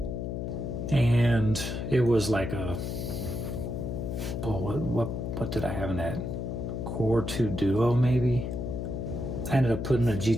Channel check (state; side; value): noise; left; hum, 3 dB below the sound